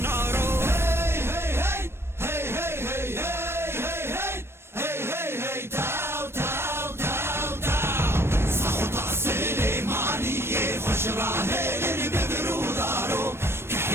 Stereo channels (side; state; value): left; late; 0.12 ms